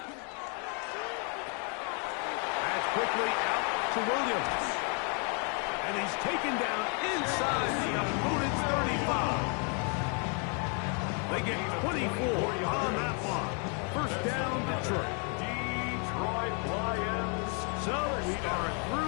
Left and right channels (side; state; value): right; quieter; 38.3 dB